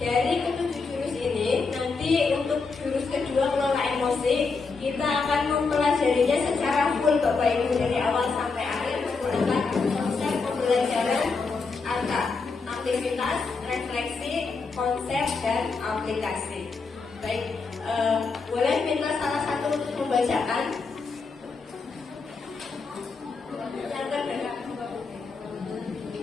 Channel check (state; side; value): quieter; right; 4.5 dB